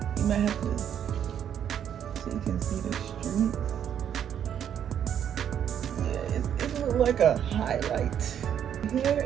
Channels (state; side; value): quieter; left; 9.2 dB